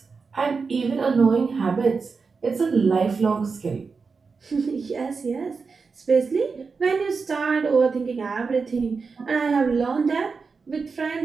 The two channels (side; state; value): left; quieter; 4.8 dB